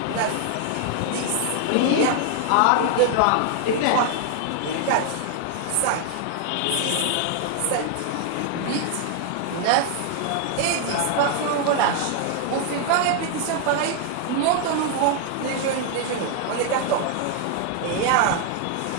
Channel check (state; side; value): different; both; correlation 0.00